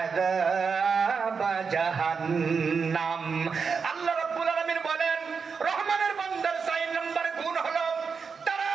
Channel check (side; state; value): left; quieter; 5.6 dB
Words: জাহান্নাম। আল্লাহ রাব্বুল আলামিন বলেন রহমানের বান্দার 4 নাম্বার গুণ হলো তারা